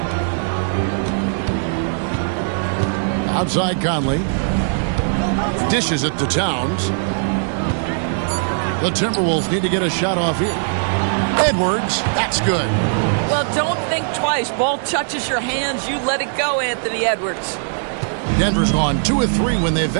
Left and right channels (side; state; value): left; silent; digital silence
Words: Outside Conley. Dishes it to Towns. The Timberwolves need to get a shot off here. Edwards, that's good. Well, don't think twice. Ball touches your hands, you let it go, Anthony Edwards. Denver's gone 2 of 3 when they